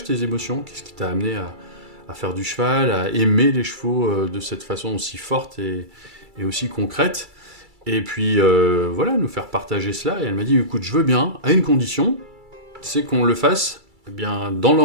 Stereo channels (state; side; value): late; left; 2.3 ms